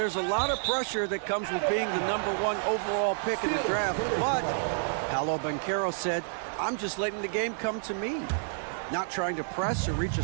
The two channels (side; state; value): left; silent; 58 dB below the other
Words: a lot of pressure that comes with being the #1 overall pick in the draft, but Paolo Banchero said, I'm just letting the game come to me. Not trying to press or reach a